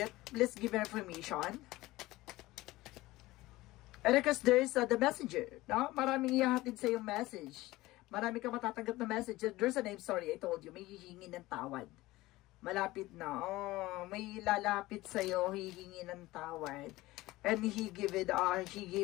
please give information. And because there's the messenger, no? Maraming ihahatid sa yung message. Marami ka matatanggap na message. There's a name, sorry, I told you, may hihingi ng tawad. Malapit na. Oh, may lalapit sa iyo, hihingi ng tawad. And he gave it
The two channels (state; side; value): quieter; right; 18.6 dB